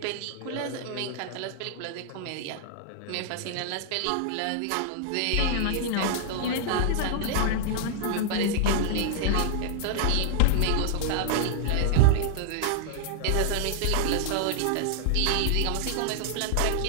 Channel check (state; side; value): different; both; correlation 0.00